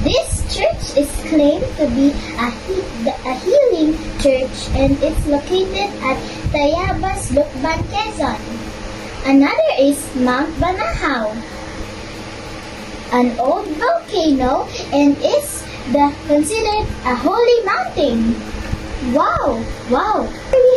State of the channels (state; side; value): identical; both; correlation 1.00